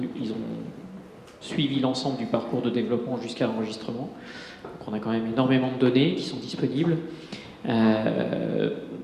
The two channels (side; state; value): both; identical; correlation 1.00